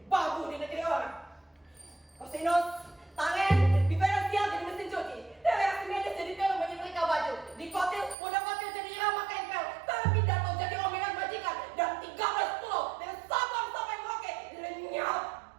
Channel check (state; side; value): drops out; left; at 8.2 s